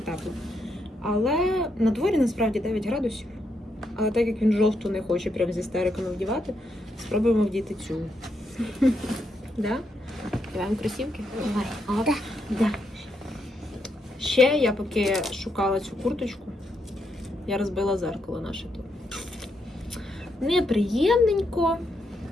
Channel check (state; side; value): normal; both; correlation 0.80